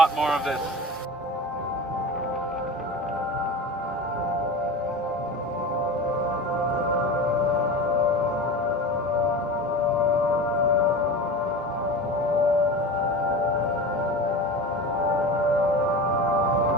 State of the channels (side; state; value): both; normal; correlation 0.31